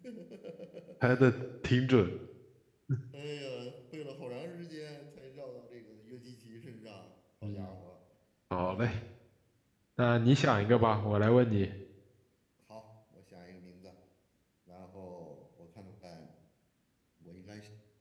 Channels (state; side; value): identical; both; correlation 1.00